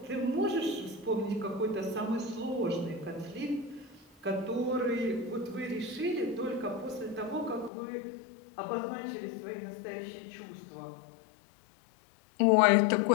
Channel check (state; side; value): drops out; right; at 7.7 s